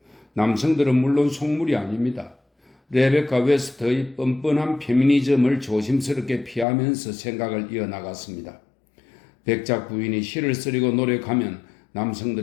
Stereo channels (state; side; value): drops out; right; at 6.7 s